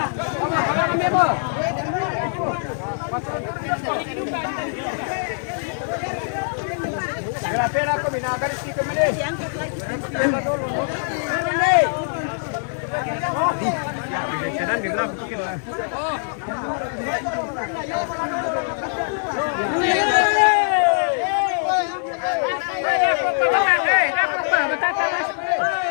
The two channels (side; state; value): right; silent; digital silence